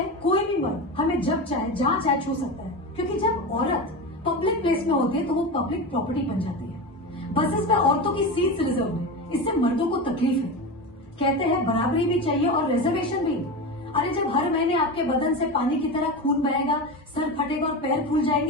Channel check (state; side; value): normal; both; correlation 0.23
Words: कोई भी मर्द हमें जब चाहे जहां चाहे छू सकता है, क्योंकि जब औरत पब्लिक प्लेस में होती है तो वो पब्लिक प्रॉपर्टी बन जाती है। बसेस में औरतों की सीट्स रिजर्व है, इससे मर्दों को तकलीफ है। कहते हैं बराबरी भी चाहिए और रिजर्वेशन भी। अरे जब हर महीने आपके बदन से पानी की तरह खून बहेगा, सर फटेगा और पैर फूल